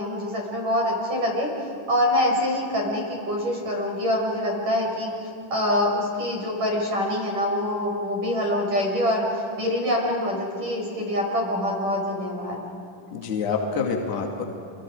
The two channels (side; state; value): left; late; 10 ms